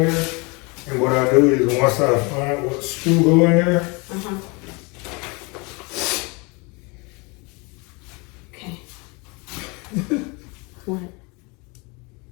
And what I do is once I find what screw go in there, Okay. What?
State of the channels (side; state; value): right; quieter; 29.1 dB